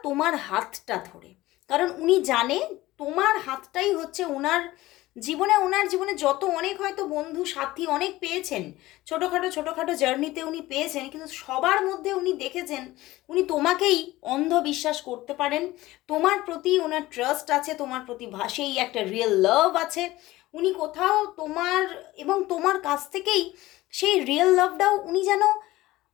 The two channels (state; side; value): quieter; right; 17.7 dB